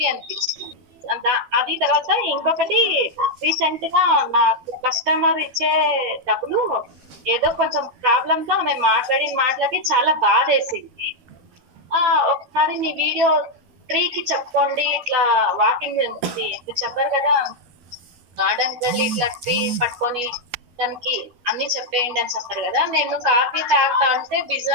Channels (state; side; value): late; left; 12 ms